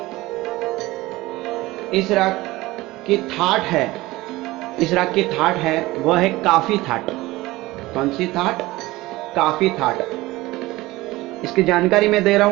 की थाट है वह है काफी थाट। कौन सी थाट? काफी थाट। इसकी जानकारी मैं दे रहा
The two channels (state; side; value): quieter; left; 19.2 dB